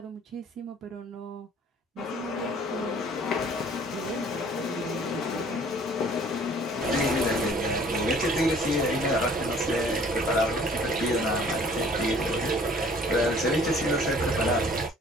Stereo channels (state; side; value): normal; both; correlation 0.54